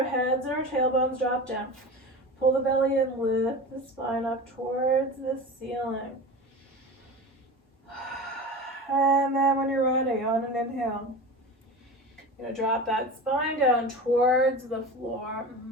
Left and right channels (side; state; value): both; normal; correlation 0.30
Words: heads and our tailbones drop down. Pull the belly in, lift the spine up towards the ceiling. And then when you're ready, on an inhale, you're going to drop that spine down towards the floor.